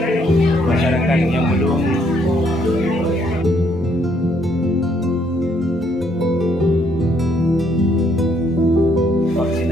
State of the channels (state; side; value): normal; both; correlation 0.69